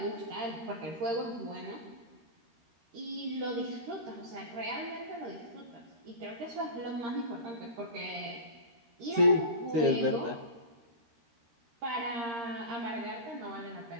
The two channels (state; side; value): late; left; 13 ms